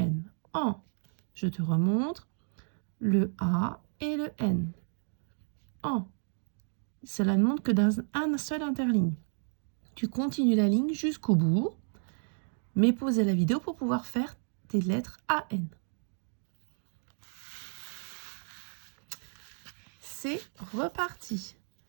AN. Je te remontre le A et le N. AN. Cela ne montre que d'un seul interligne. Tu continues la ligne jusqu'au bout, mais pausez la vidéo pour pouvoir faire tes lettres AN. C'est reparti.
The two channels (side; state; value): left; silent; 56 dB below the other